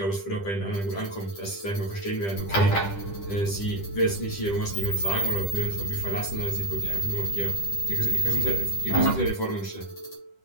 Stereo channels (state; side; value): late; right; 10 ms